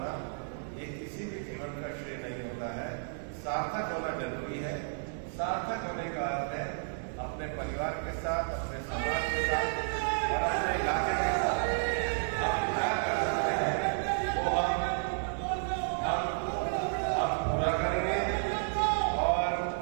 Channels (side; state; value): left; silent; digital silence